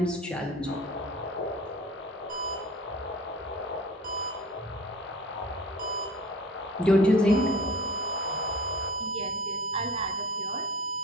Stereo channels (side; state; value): both; normal; correlation 0.41